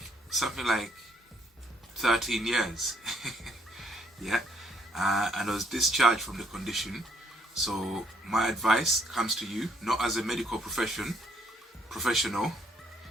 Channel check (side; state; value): both; normal; correlation 0.69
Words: something like 13 years. Yeah, and I was discharged from the condition. So my advice comes to you, not as a medical professional,